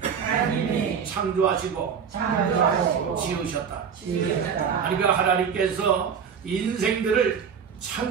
창조하시고 지으셨다. 그러니까 하나님께서 인생들을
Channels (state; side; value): quieter; left; 7.0 dB